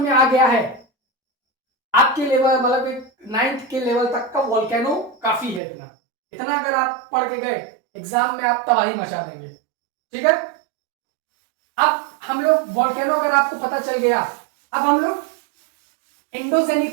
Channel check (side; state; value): left; drops out; at 5.6 s